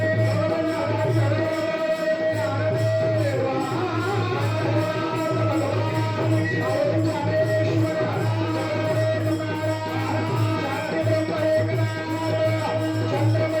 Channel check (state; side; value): identical; both; correlation 1.00